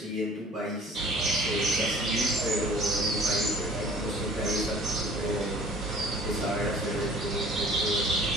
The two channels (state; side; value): normal; both; correlation 0.50